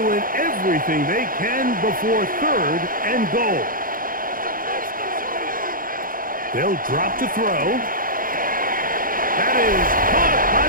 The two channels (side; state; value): left; late; 0.41 ms